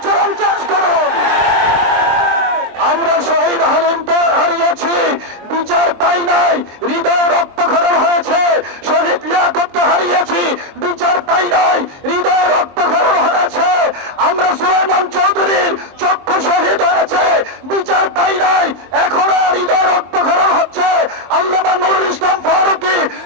চেঞ্জ করুন। আমরা শহীদ হালিমকে হারিয়েছি, বিচার পাই নাই, হৃদয় রক্তক্ষরণ হয়েছে। শহীদ লিয়াকতকে হারিয়েছি, বিচার পাই নাই, হৃদয় রক্তক্ষরণ হয়েছে। আমরা সুলাইমান চৌধুরীর চক্ষু শহীদ হয়েছে, বিচার পাই নাই, এখনো হৃদয় রক্তক্ষরণ হচ্ছে। আল্লামা নুরুল ইসলাম ফারুকী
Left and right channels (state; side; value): late; left; 23 ms